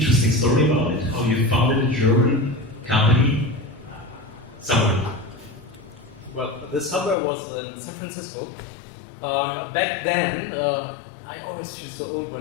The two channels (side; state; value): right; drops out; at 7.2 s